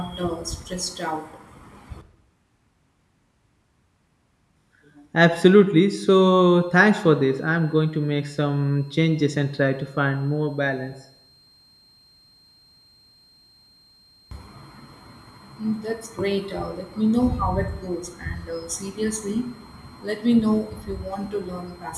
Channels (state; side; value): identical; both; correlation 1.00